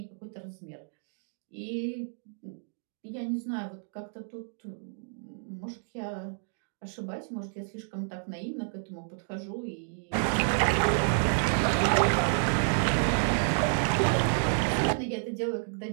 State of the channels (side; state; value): left; silent; digital silence